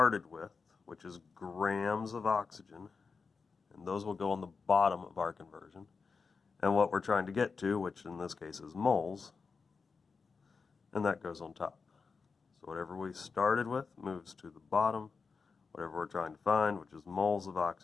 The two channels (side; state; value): right; quieter; 4.9 dB